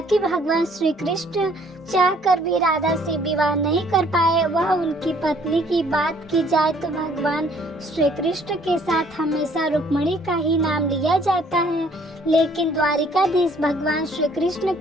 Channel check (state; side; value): normal; both; correlation 0.60